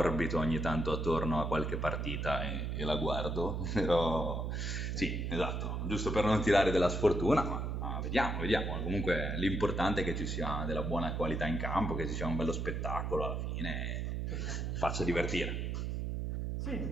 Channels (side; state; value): right; noise; hum, 2 dB below the sound